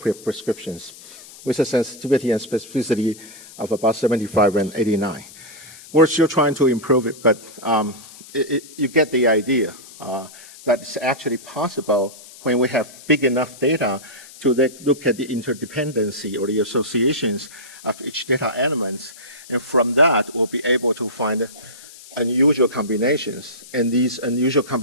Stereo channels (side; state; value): left; noise; hiss, 19 dB below the sound